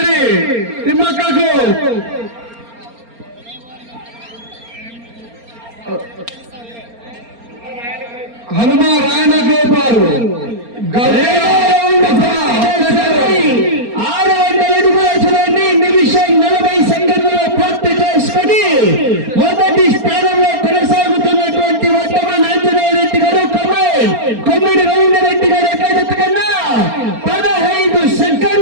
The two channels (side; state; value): left; late; 4.3 ms